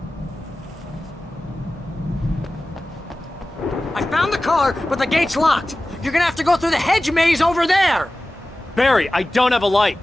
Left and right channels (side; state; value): both; normal; correlation 0.96